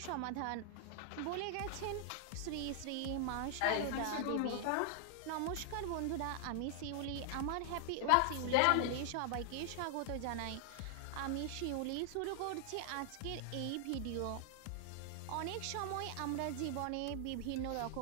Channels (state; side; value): different; both; correlation 0.00